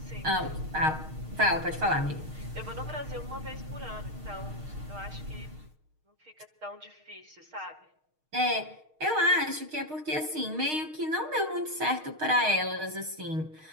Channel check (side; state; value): left; late; 6.5 ms